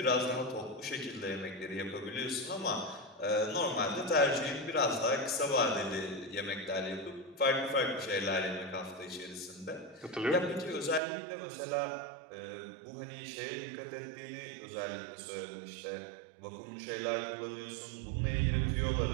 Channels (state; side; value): drops out; left; at 11.0 s